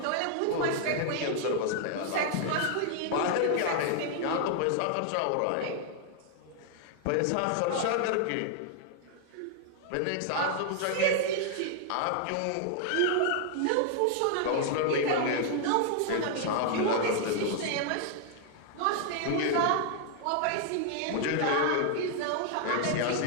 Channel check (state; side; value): different; both; correlation 0.00